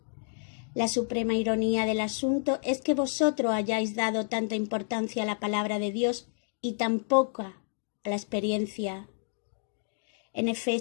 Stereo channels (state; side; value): silent; right; digital silence